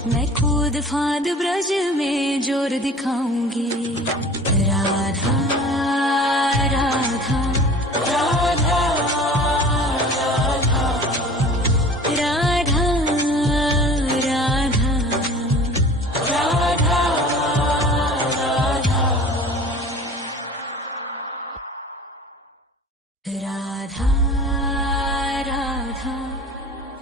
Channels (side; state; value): both; normal; correlation 0.42